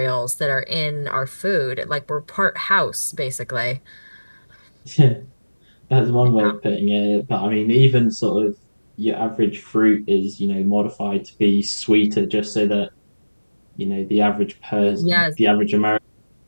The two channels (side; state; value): both; inverted; correlation -1.00